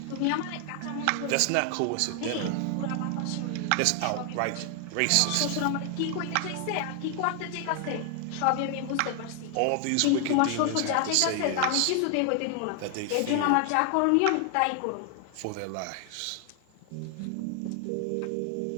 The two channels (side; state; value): both; different; correlation 0.00